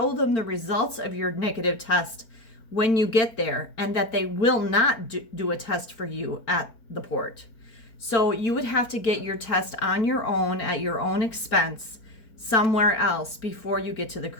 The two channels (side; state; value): right; late; 4.4 ms